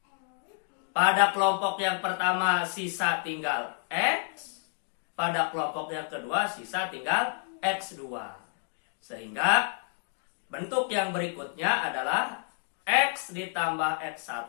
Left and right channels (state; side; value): silent; right; 58 dB below the other